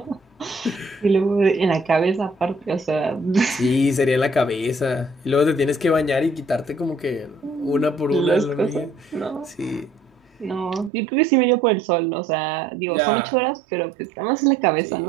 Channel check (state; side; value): drops out; left; at 10.9 s